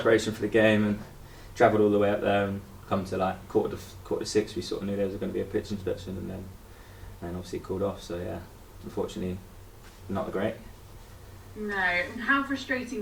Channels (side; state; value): both; identical; correlation 1.00